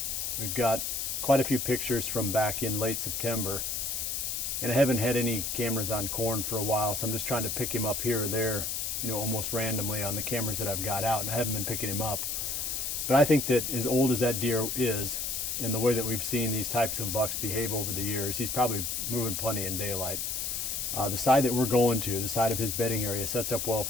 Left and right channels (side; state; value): left; noise; hiss, 2 dB below the sound